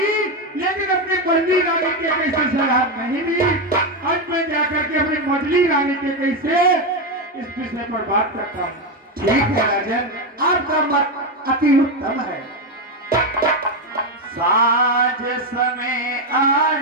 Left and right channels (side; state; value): both; normal; correlation 0.09